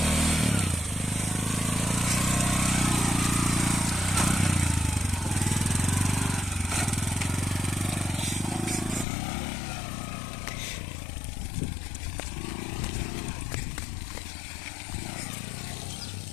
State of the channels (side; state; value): right; drops out; at 9.1 s